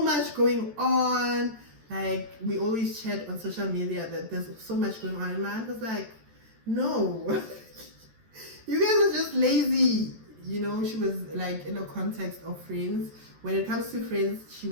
much going on. Like, we always chat on social media that there's so much going on. And my aunt was like, no, you guys are just lazy. You know, she was like in a context of friends. When it comes to friends, she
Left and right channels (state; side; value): late; left; 14 ms